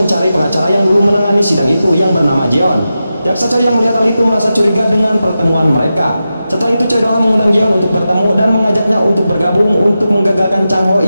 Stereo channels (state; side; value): inverted; both; correlation -0.91